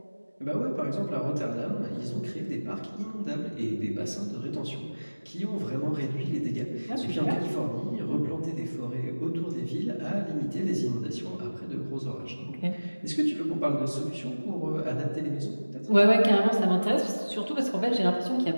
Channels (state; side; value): inverted; both; correlation -1.00